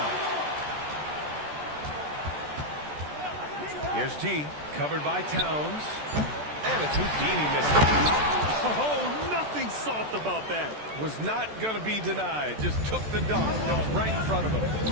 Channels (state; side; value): late; left; 14 ms